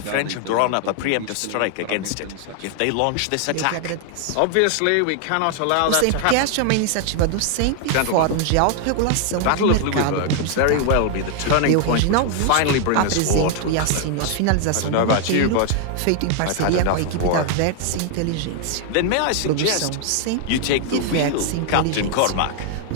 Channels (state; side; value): different; both; correlation 0.00